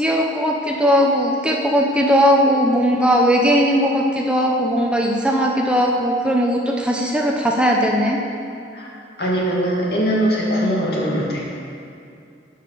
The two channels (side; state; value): both; normal; correlation 0.54